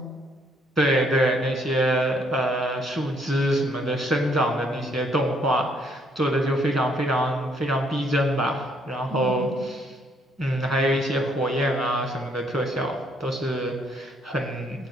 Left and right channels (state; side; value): normal; both; correlation 0.68